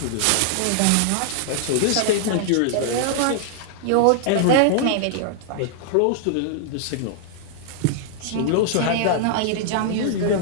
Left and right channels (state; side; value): different; both; correlation -0.01